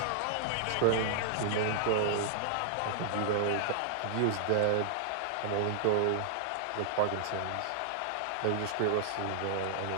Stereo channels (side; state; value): both; different; correlation -0.01